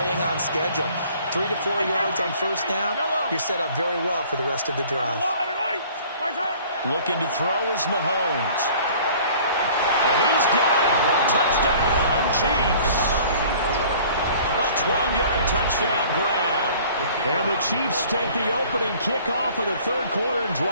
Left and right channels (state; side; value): inverted; both; correlation -0.51